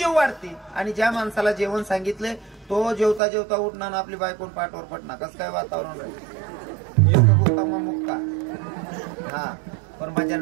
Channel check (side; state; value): left; drops out; at 3.2 s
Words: वाढते आणि ज्या माणसाला जेवण सांगितले तो जेवता जेवता उठणार आपली बायकोन पाठवर पडणार कसं काय वातावरण राहील मुक्का हा पण माझ्या